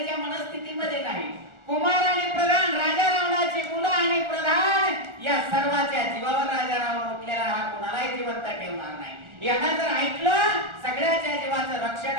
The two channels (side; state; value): left; late; 1.4 ms